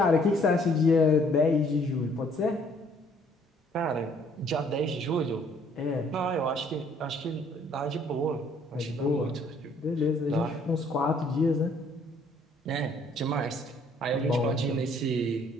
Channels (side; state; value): both; normal; correlation 0.62